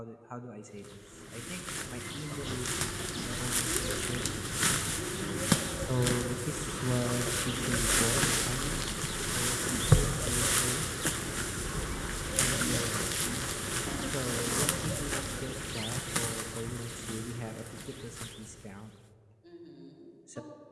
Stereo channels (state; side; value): identical; both; correlation 1.00